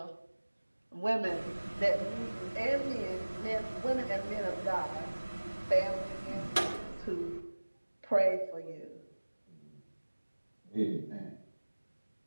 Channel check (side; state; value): both; inverted; correlation -1.00